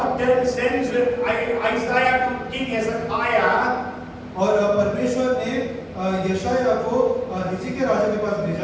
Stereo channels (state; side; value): identical; both; correlation 1.00